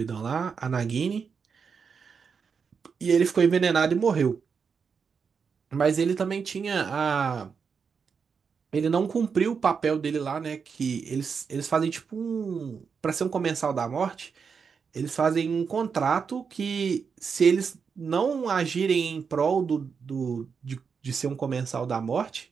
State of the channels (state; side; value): quieter; left; 5.9 dB